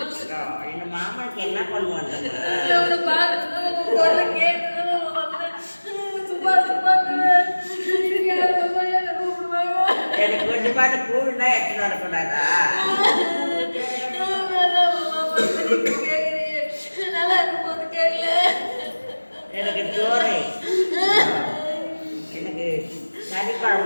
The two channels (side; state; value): both; inverted; correlation -1.00